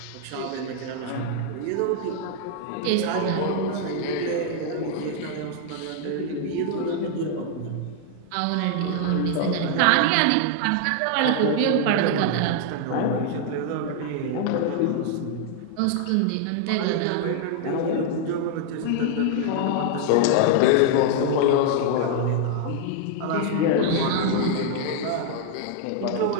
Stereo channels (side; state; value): both; different; correlation 0.00